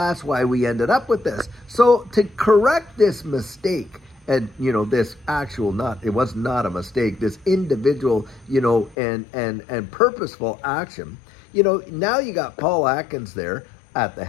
why we ended up with this. So to correct this mistake, and this it was not a mistake, this individual, and purposeful action, now you got Paul Atkins there at the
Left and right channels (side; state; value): right; drops out; at 9.0 s